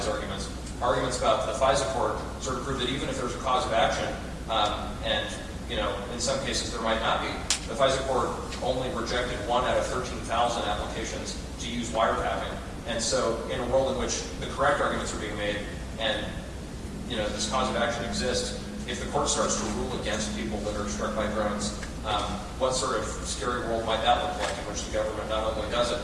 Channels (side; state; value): both; identical; correlation 1.00